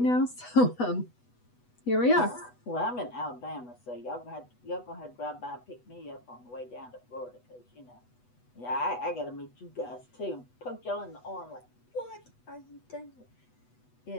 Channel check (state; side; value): late; right; 8.1 ms